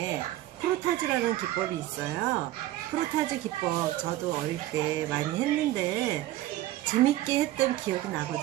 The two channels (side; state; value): left; quieter; 15.3 dB